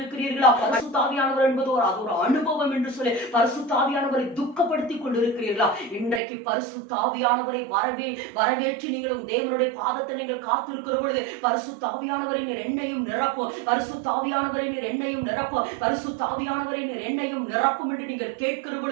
பரிசுத்த ஆவியானவர் என்பது அது ஒரு அனுபவம் என்று சொல்லி பரிசுத்த ஆவியானவரை துக்கப்படுத்தி கொண்டிருக்கிறீர்களா? இன்றைக்கு பரிசுத்த ஆவியானவரை வரவேற்று நீங்களும் தேவனுடைய பாதத்தை நீங்கள் காத்திருக்கிற பொழுது பரிசுத்த ஆவியானவரை நீர் என்னையும் நிரப்ப நிரப்பும், பரிசுத்த ஆவியானவரே நீர் என்னையும் நிரப்பும், பரிசுத்த ஆவியானவரே நீர் என்னையும் நிரப்பும் என்று நீங்கள் கேட்கிற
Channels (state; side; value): drops out; left; at 6.2 s